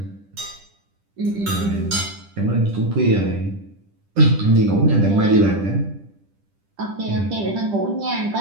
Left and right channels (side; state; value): left; late; 10 ms